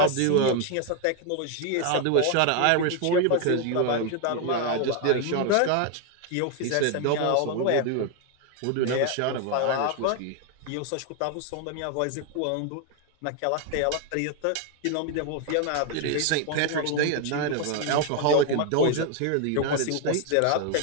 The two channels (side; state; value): both; different; correlation 0.01